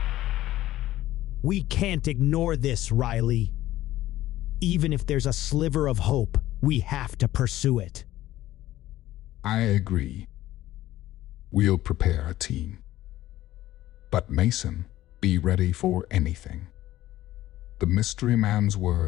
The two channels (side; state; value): right; quieter; 14.9 dB